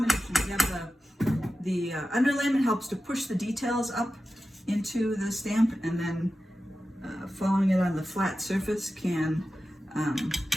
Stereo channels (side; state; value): both; normal; correlation 0.93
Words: We have the underlayment helps to push the details up into the stamp, and then following it on the flat surface can